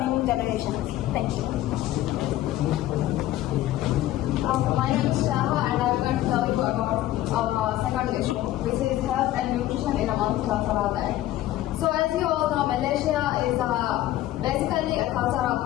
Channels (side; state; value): right; quieter; 14.4 dB